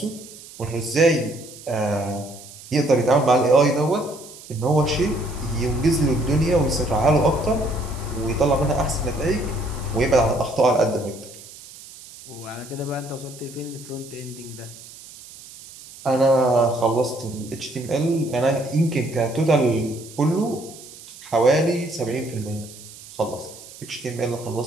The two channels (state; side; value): noise; right; hiss, 18 dB below the sound